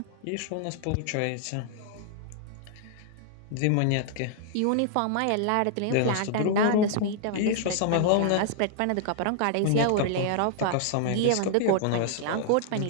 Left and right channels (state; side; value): different; both; correlation -0.01